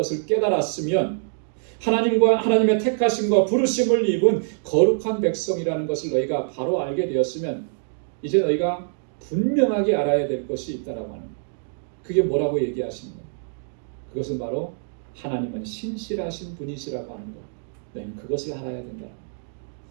깨달았으면, 하나님과 하나님의 택하심과 부르심을 입은 거룩한 백성이라는 것을 너희가 바로 알게 되었으면 이제 너희가 분명하게 알아야 될 것이 있다라고 하는 거예요. 그게 뭐라고 얘기하시는 거예요? 그것은 바로 하나님은 신실하신 분이시라고 하는 것. 너희는 그것을 알아야 된다.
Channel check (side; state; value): left; silent; digital silence